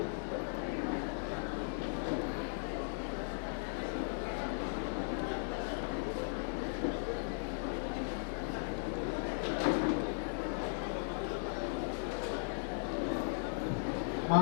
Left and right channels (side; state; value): right; silent; digital silence